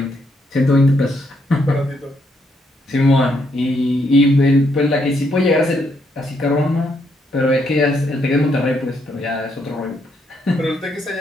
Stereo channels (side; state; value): both; normal; correlation 0.75